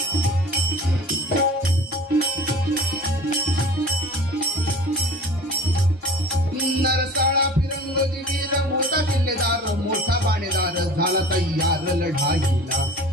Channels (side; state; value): both; normal; correlation 0.40